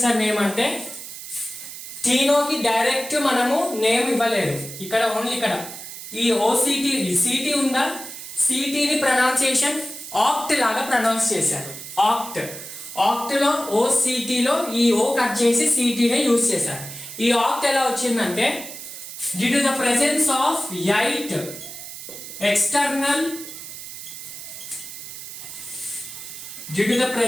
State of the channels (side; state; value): right; noise; hiss, 11 dB below the sound